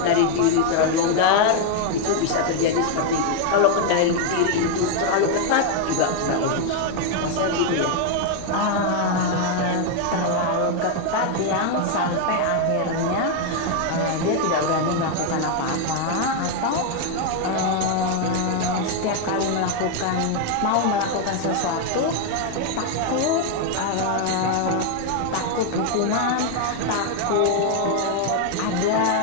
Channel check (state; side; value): different; both; correlation 0.01